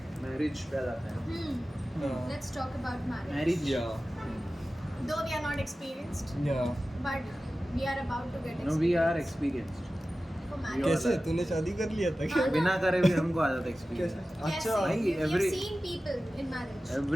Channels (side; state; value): both; normal; correlation 0.95